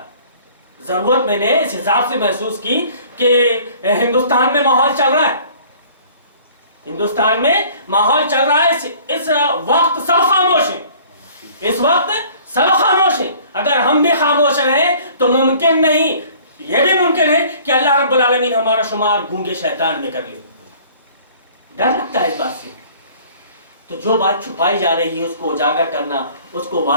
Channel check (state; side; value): inverted; both; correlation -0.51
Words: ضرورت میں نے اس حساب سے محسوس کی کہ ہندوستان میں ماحول چل رہا ہے، ہندوستان میں ماحول چل رہا ہے، اس وقت سب خاموش ہیں، اس وقت سب خاموش ہیں۔ اگر ہم بھی خاموش رہیں تو ممکن نہیں، یہ بھی ممکن ہے کہ اللہ رب العالمین ہمارا شمار گونگے شیطان میں کر لے۔ ڈر لگتا ہے اس بات سے۔ تو جو بات چھپائی جا رہی ہے اس کو اجاگر کرنا، اس کو